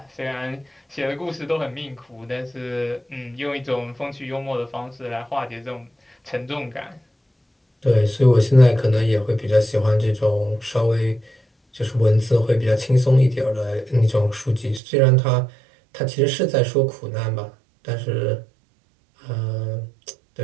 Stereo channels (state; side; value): drops out; left; at 14.8 s